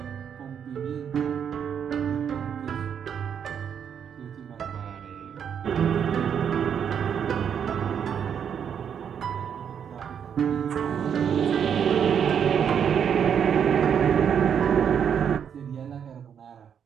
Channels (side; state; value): left; quieter; 8.0 dB